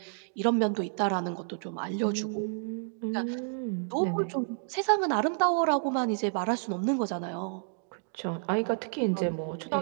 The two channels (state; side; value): silent; left; digital silence